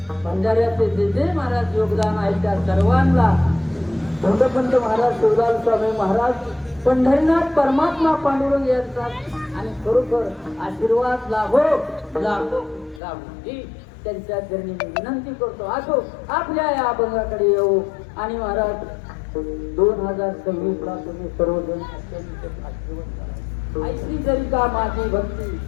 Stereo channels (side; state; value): right; drops out; at 13.0 s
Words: भंडाऱ्याचे जे जे महाराज योगदान आहे त्या सर्वांना धोंडपंत महाराज शिवलाल स्वामी महाराज पंढरीनाथ परमात्मा पांडुरंग यांचा आणि खरोखर आशीर्वाद लाभो लाभो लाभो ही त्यांच्या चरणी मी विनंती करतो. असो आपल्या या अभंगाकडे येऊ आणि महाराज 2026ला तुम्ही सर्वजण अत्यंत भाग्यवान. ऐशी जरी का माझी भक्ती